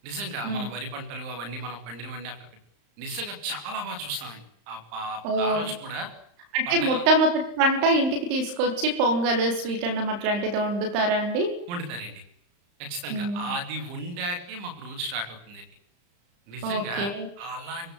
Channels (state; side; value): late; left; 35 ms